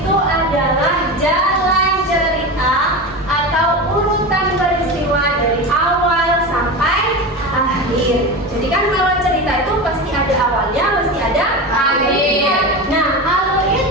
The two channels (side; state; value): both; normal; correlation 0.25